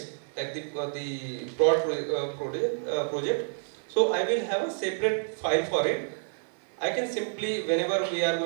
like the project, so I will have a separate file for it. I can simply, whenever we are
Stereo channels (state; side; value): silent; left; 59 dB below the other